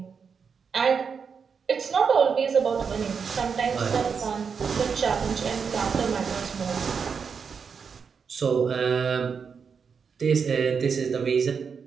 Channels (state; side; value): quieter; left; 6.1 dB